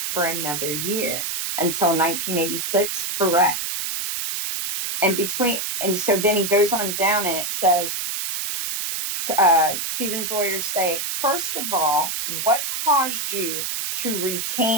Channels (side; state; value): right; noise; hiss, 3 dB below the sound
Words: for another year until 1986, correct. And so then he goes on down and it says, Stephen's lawyers say, first of all, what caused you to